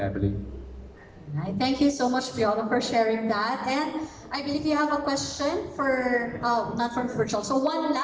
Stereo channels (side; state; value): both; identical; correlation 1.00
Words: Right. Thank you so much, Piolo, for sharing that. And I believe you have a question for, not from virtual, so one